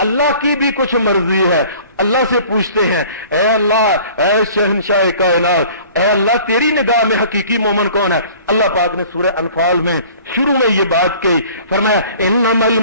की भी कुछ मर्जी है। अल्लाह से पूछते हैं ऐ अल्लाह ऐ शहंशाह कायनात, ऐ अल्लाह तेरी निगाह में हकीकी मोमिन कौन है। अल्लाह पाक ने सूरह अनफाल में शुरू में ये बात कही, फरमाया इन्नमल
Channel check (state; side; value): inverted; both; correlation -0.49